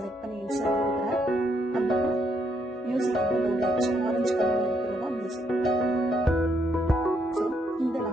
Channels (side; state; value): both; normal; correlation 0.74